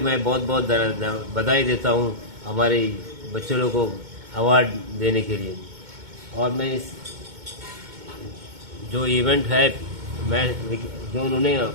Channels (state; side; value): late; left; 2.2 ms